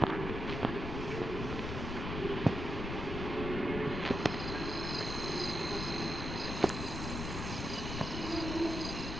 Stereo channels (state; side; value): noise; left; rumble, 4 dB below the sound